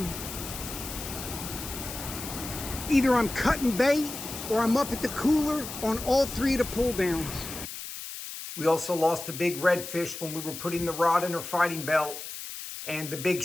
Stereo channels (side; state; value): left; noise; hiss, 9 dB below the sound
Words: either I'm cutting bait or I'm up at the cooler on all 3 of the pull downs. We also lost a big redfish when we were putting the rod in her fighting belt, and the big